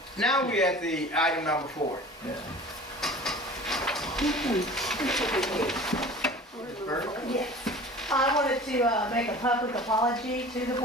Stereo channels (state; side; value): normal; both; correlation 0.41